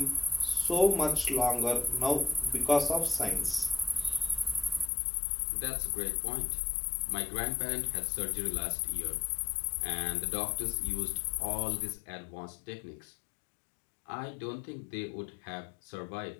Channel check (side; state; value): right; drops out; at 4.9 s